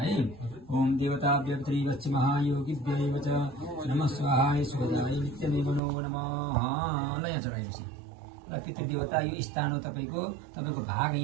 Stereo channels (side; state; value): left; drops out; at 5.8 s